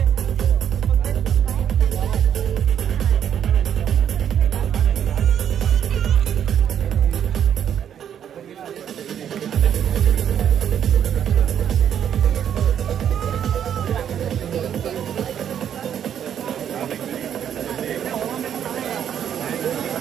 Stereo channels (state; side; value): quieter; left; 9.2 dB